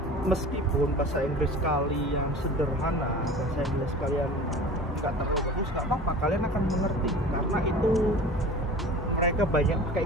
Meskipun bahasa Inggris kalian sederhana, bahasa Inggris kalian nggak terlalu bagus, nggak apa-apa, kalian akan mengerti karena itu mereka banyak pakai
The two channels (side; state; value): both; normal; correlation 0.39